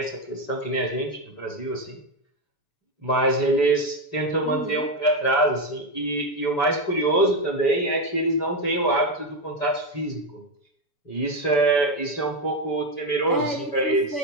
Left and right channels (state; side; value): late; right; 6.9 ms